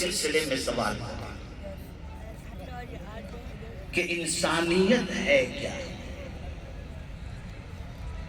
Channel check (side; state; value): both; identical; correlation 1.00